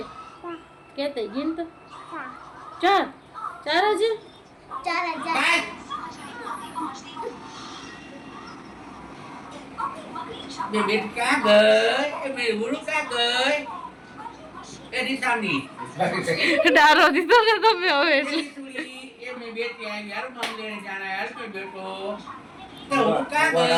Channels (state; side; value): identical; both; correlation 1.00